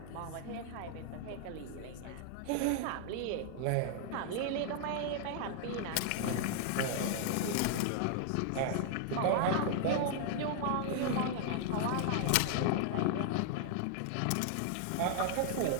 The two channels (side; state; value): both; different; correlation 0.00